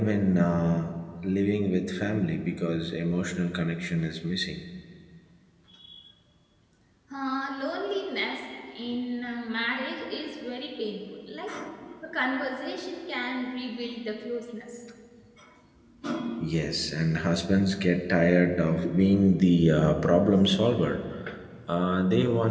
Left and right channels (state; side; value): identical; both; correlation 1.00